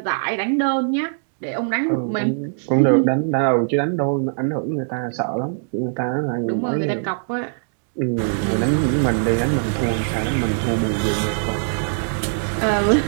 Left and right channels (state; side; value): silent; left; digital silence